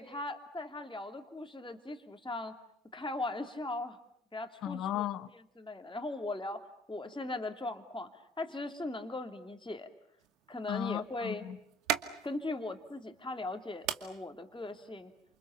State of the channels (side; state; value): both; normal; correlation 0.54